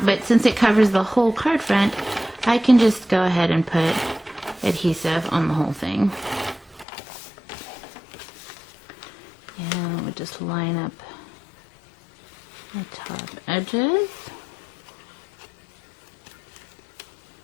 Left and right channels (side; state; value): right; drops out; at 6.9 s